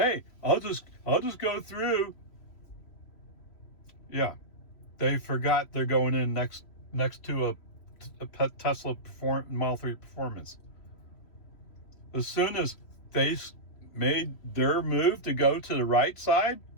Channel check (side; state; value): right; late; 3.1 ms